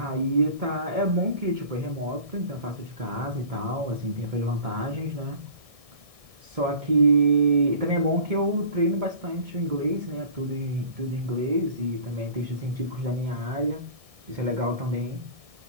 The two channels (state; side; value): late; left; 1.6 ms